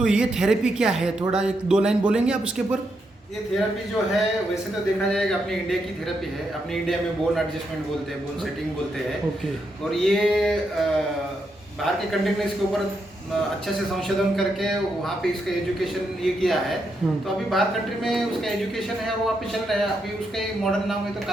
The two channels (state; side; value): normal; both; correlation 0.81